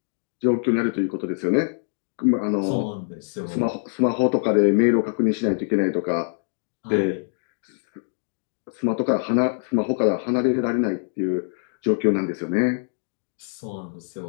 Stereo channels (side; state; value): right; silent; digital silence